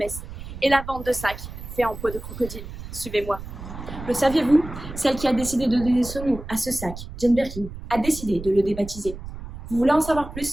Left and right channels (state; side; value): noise; right; rumble, 11 dB below the sound